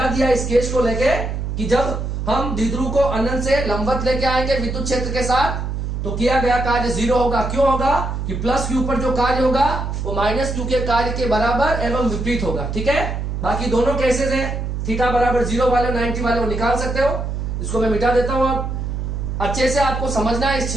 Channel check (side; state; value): right; noise; hum, 3 dB below the sound